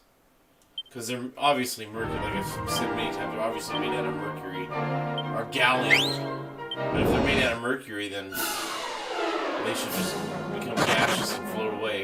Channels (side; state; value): both; identical; correlation 1.00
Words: Because they're obviously mercury, like I've said many times, they're obviously made out of mercury. Or gallium. But if they're made out of mercury, then they should just become gaseous and float